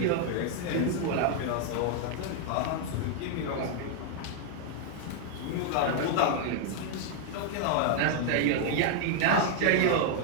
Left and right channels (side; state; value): both; different; correlation 0.00